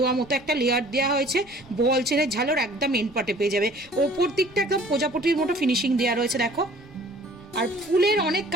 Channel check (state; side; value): noise; left; rumble, 27 dB below the sound